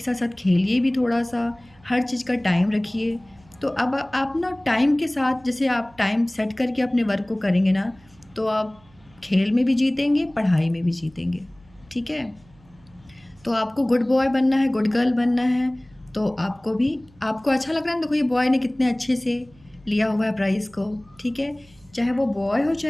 साथ साथ खेलिए भी थोड़ा सा, हर चीज़ का टाइम रखिए। तो अब आप ना टाइम के साथ, जैसे आप टाइम सेट करके अपने वर्क को करेंगे ना, तो आप खेल में भी जीतेंगे, पढ़ाई में भी जीतेंगे, ठीक है। तो आपको गुड बॉय बनना है, गुड गर्ल बनना है, तो आपको अच्छा लग रहा है ना, देखो ये बॉय ने कितने अच्छे से लिया हुआ है प्राइज़ को, ठीक है। चाहे वो बॉय हो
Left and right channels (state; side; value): noise; right; hum, 28 dB below the sound